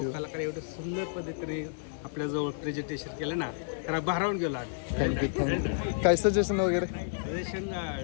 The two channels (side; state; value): right; silent; digital silence